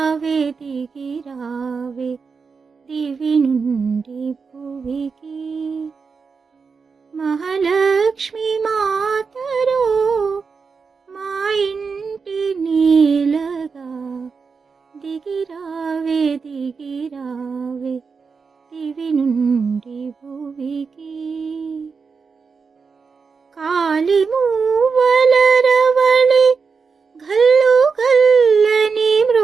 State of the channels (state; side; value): quieter; left; 5.2 dB